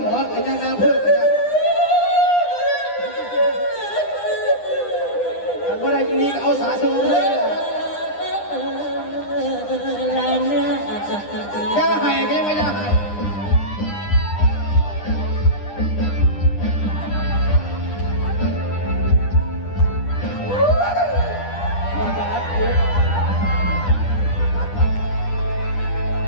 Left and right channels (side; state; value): right; late; 9.9 ms